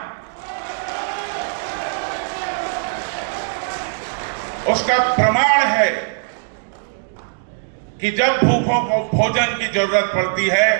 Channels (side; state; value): left; silent; digital silence